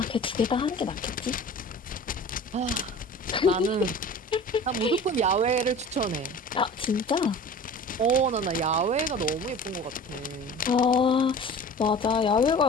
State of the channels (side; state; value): both; normal; correlation 0.40